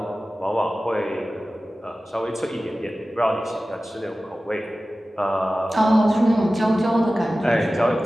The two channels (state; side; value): normal; both; correlation 0.96